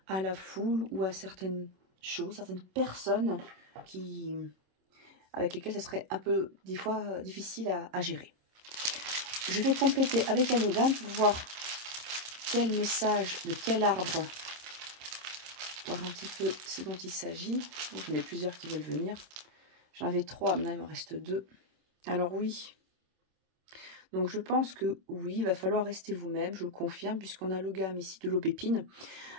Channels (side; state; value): left; late; 26 ms